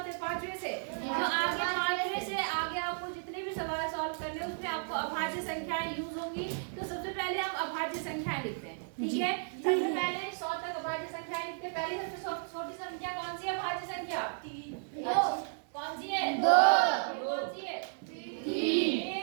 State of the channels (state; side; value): silent; left; digital silence